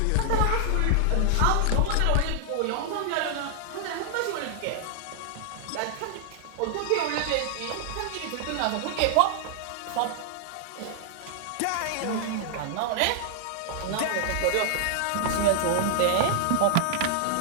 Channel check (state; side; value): different; both; correlation 0.00